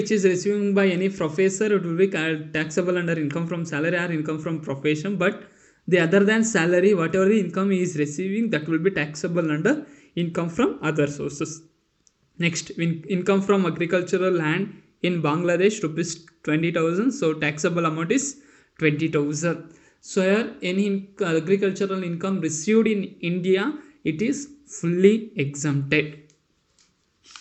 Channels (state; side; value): identical; both; correlation 1.00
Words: is receiving by any professor, it will be taxable under income from salary or income from profession. But the other than salary, whatever the income he is receiving, that will be taxable under income from other sources. Next, income from agricultural land in Bangladesh rupees 20,000. So taxable amount is 20,000. So here any agricultural income received in India, it is fully exempted.